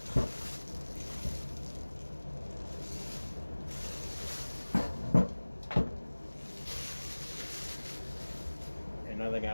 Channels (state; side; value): inverted; both; correlation -1.00